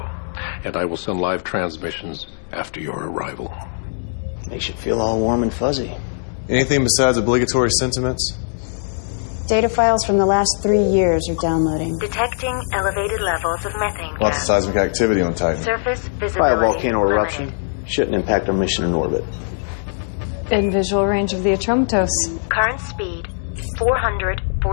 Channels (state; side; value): silent; right; 63 dB below the other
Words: and I will send live transmissions after your arrival. Makes you feel all warm and fuzzy. Anything besides obligatory sentiments? Data files from the last 3 years are downloading. Detecting elevated levels of methane gas. Lots of seismic activity on Titan. Surface By a visibility volcano eruption. limited. Shouldn't impact our mission in orbit. In visual range of the Atromatos. Current speed